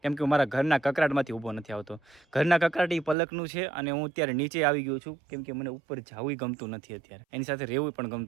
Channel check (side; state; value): left; drops out; at 3.2 s